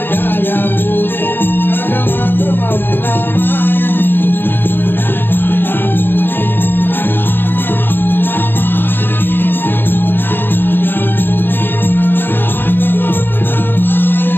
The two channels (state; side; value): late; right; 0.097 ms